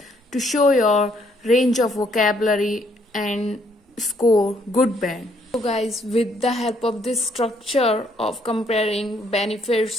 show your range of vocabulary and score good band. So guys, with the help of this structure of comparing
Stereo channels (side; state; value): both; normal; correlation 0.69